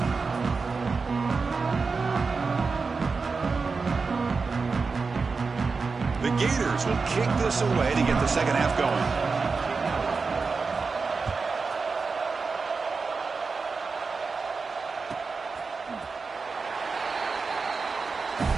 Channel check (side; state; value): left; quieter; 4.6 dB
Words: The Gators will kick this away to get the second half going.